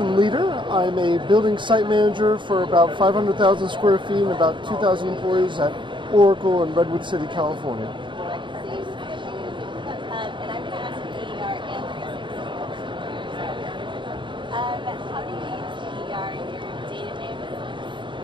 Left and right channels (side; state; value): left; late; 0.23 ms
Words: Leader. I'm a building site manager for about 500,000 square feet and about 2,000 employees at Oracle in Redwood City, California. And I'm going to ask you EER and 360. How do you use EER in your day-to-day